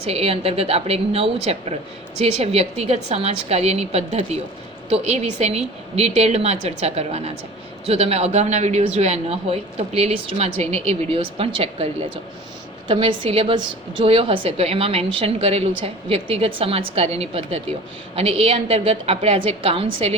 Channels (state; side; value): normal; both; correlation 0.41